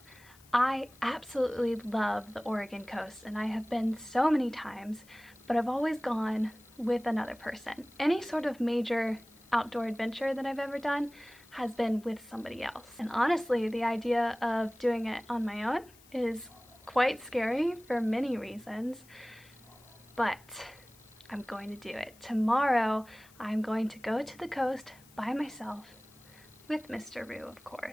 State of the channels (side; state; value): left; noise; hiss, 26 dB below the sound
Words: I absolutely love the Oregon coast, and I have been so many times, but I've always gone with another person. Any sort of major outdoor adventure that I've ever done has been with somebody else. And honestly, the idea of doing it on my own is quite scary for many reasons, but I'm going to do it. Tomorrow, I'm going to go to the coast by myself with Mr. Roo, of